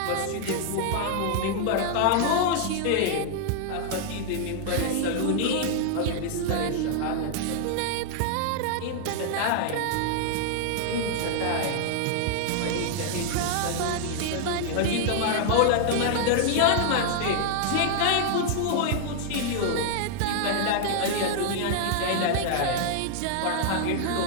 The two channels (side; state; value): both; different; correlation 0.00